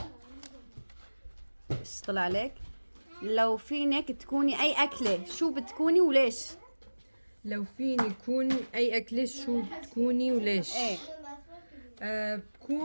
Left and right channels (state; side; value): inverted; both; correlation -1.00